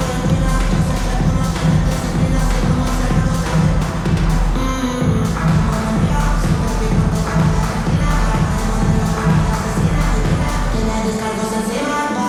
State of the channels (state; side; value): identical; both; correlation 1.00